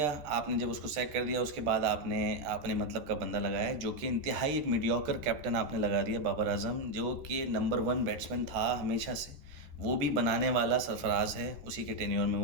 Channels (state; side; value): late; left; 14 ms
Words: आपने जब उसको सैक कर दिया उसके बाद आपने आपने मतलब का बंदा लगाया, जो कि इंतहाई एक मीडियोकर कैप्टन आपने लगा दिया, बाबर आजम, जो कि नंबर 1 बैट्समैन था हमेशा से। वो भी बनाने वाला सरफराज है, उसी के टेन्योर में